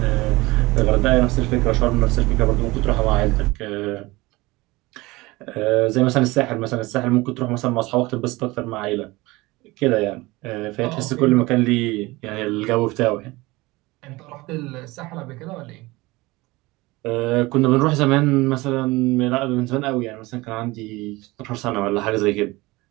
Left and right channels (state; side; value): quieter; left; 21.4 dB